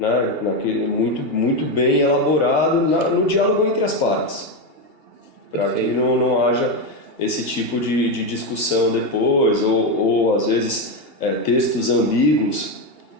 muito bem elaborado no diálogo entre as partes, para que não haja esse tipo de discussão depois, ou às vezes textos ambíguos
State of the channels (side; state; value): left; late; 2.8 ms